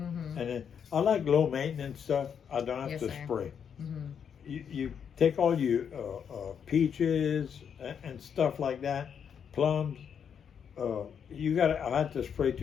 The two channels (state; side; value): quieter; right; 7.6 dB